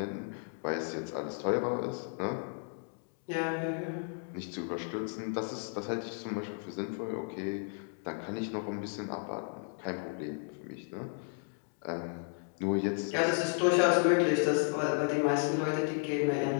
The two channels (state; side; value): silent; right; 55 dB below the other